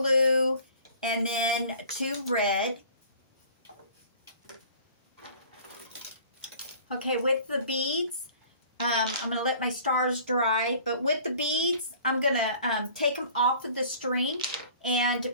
and then 2 red. Okay, with the beads, I'm going to let my stars dry. But with the beads, I'm going to take them off of the string and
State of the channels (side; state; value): both; inverted; correlation -0.49